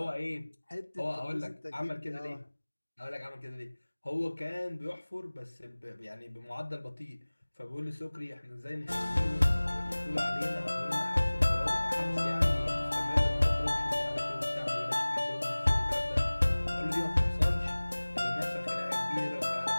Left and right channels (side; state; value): both; inverted; correlation -1.00